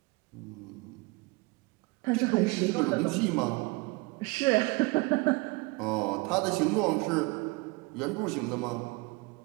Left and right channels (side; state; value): left; quieter; 25.8 dB